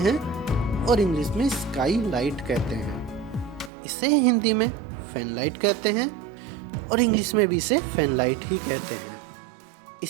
और इंग्लिश में स्काई लाइट कहते हैं। इसे हिंदी में फैन लाइट कहते हैं और इंग्लिश में भी इसे फैन लाइट ही कहते हैं।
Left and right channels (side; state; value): left; drops out; at 3.7 s